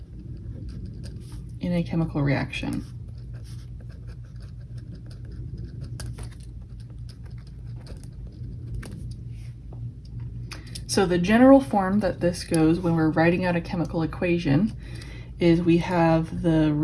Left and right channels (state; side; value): identical; both; correlation 1.00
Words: In a chemical reaction. So the general form that this goes when we're writing out a chemical equation is we have the